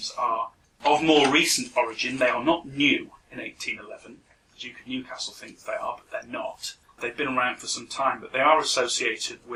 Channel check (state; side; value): identical; both; correlation 1.00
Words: are of more recent origin. They are not new in 1811. The Duke of Newcastle thinks they are, but they're not. They've been around for some time, but they are associated